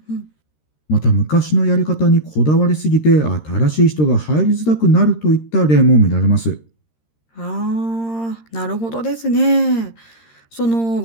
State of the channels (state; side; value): late; right; 13 ms